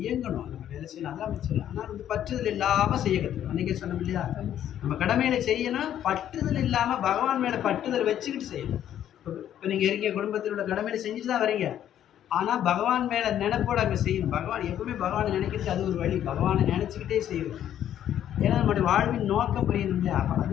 இயங்கணும், நம்ம வேலை செய்யணும், அதான் சொல்லலாம். ஆனால் பற்றுதல் இல்லாமல் செய்ய கற்றுக்கணும். அன்றைக்கே சொன்னோம் இல்லையா, நம்ம கடமையில செய்யணும், பற்றுதல் இல்லாமல் பகவான் மேலே பற்றுதல் வச்சுக்கிட்டு செய்யணும். இப்போ நீங்கள் இருக்கீங்க, குடும்பத்தில் உள்ள கடமையில செஞ்சுட்டு தான் வரீங்க. ஆனால் பகவான் மேலே நினைப்போடு அங்கே செய்யணும். பகவான் எப்பவுமே பகவானை நினைக்கிறது அது ஒரு வழி. பகவானை நினச்சிக்கிட்டே செய்யணும். ஏன்னா நம்முடைய வாழ்வின் நோக்கம் புரியணும் இல்லையா. அப்போ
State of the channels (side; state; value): right; quieter; 10.8 dB